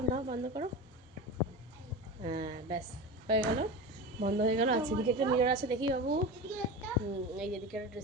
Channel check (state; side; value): normal; both; correlation 0.27